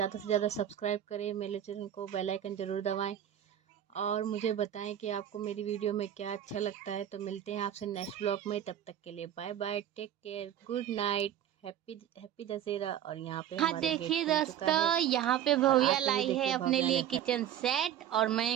से ज़्यादा सब्सक्राइब करें मेरे चैनल को। बेल आइकन ज़रूर दबाएं और मुझे बताएं कि आपको मेरी वीडियो में क्या अच्छा लगता है। तो मिलते हैं आपसे नेक्स्ट ब्लॉग में, तब तक के लिए bye bye, take care, good night, happy Dussehra. और यहाँ पे हाँ देखिए दोस्तों, यहाँ पे भव्या लाई है अपने लिए किचन सेट और मैं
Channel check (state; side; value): quieter; left; 10.6 dB